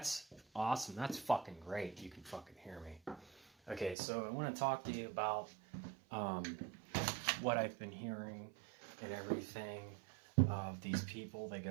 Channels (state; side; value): drops out; left; at 4.0 s